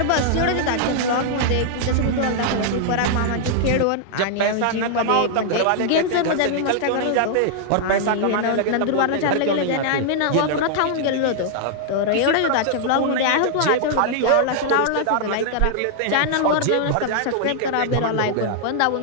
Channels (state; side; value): different; both; correlation -0.01